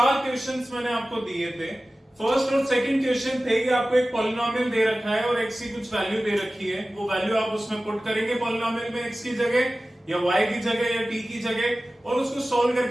क्वेश्चंस मैंने आपको दिए थे। फर्स्ट और सेकंड क्वेश्चन थे कि आपको एक पॉलिनोमियल दे रखा है और x की कुछ वैल्यू दे रखी है, वो वैल्यू आप उसमें पुट करेंगे पॉलिनोमियल में x की जगह या y की जगह या t की जगह और उसको सॉल्व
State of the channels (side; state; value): both; normal; correlation 0.96